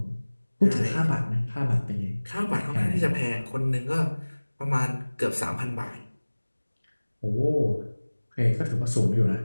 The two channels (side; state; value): both; inverted; correlation -1.00